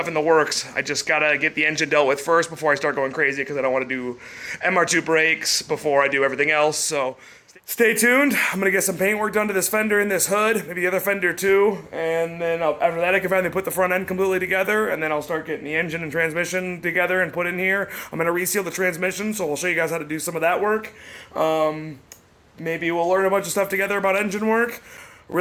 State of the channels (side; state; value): both; identical; correlation 1.00